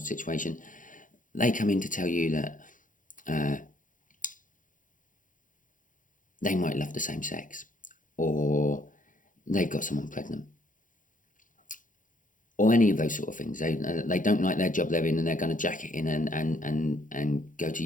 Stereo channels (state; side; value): late; right; 0.38 ms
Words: situation. They come in to tell you that they might love the same sex, or they've got someone pregnant, or any of those sort of things. They don't like their job they're in, and they're going to jack it in and go to